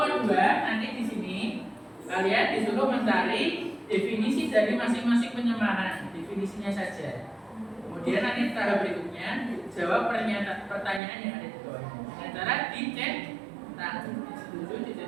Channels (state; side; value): drops out; left; at 11.0 s